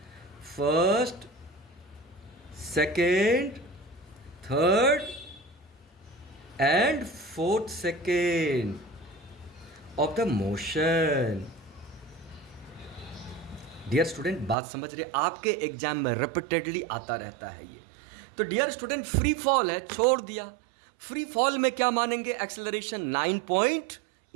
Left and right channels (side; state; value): left; drops out; at 14.6 s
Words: first second third and fourth second of the motion. Dear student बात समझ रहे, आपके एग्जाम में रिपीटेडली आता रहता है ये। तो डियर स्टूडेंट फ्री फॉल है, छोड़ दिया, फ्री फॉल में क्या मानेंगे एक्सेलरेशन